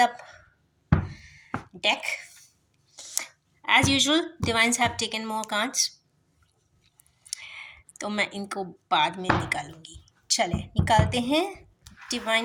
the deck. As usual divines have taken more cards, तो मैं इनको बाद में निकालूंगी। चले निकालते हैं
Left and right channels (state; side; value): identical; both; correlation 1.00